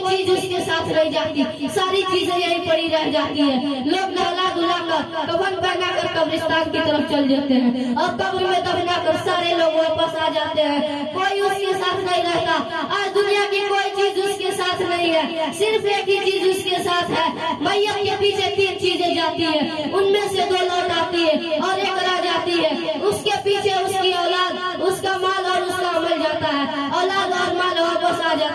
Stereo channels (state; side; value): identical; both; correlation 1.00